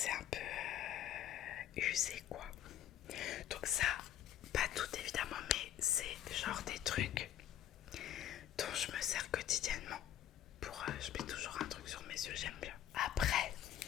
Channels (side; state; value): right; quieter; 11.5 dB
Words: un peu usé quoi. Donc ça, pas tout évidemment, mais c'est genre des trucs dont je me sers quotidiennement. Pour, je mets toujours un truc sur mes yeux, j'aime bien. Après,